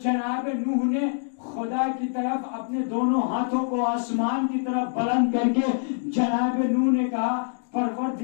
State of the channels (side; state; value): right; silent; digital silence